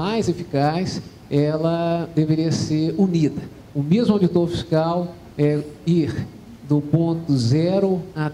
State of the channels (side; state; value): both; identical; correlation 1.00